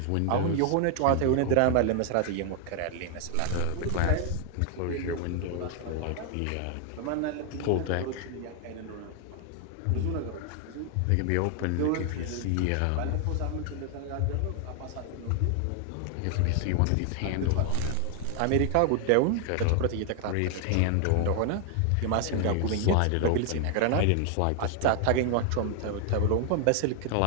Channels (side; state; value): both; different; correlation 0.00